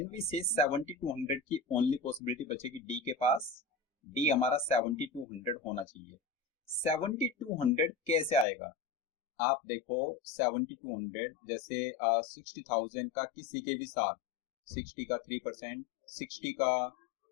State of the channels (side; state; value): right; drops out; at 8.5 s